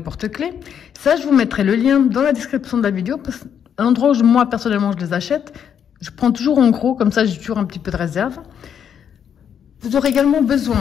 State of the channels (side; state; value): right; quieter; 8.3 dB